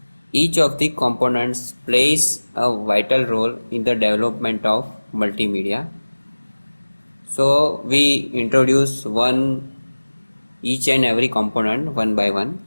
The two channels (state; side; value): inverted; both; correlation -1.00